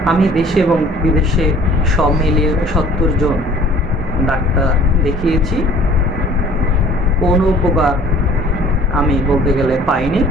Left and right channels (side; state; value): both; normal; correlation 0.51